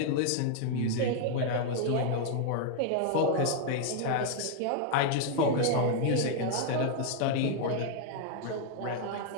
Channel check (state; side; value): different; both; correlation 0.00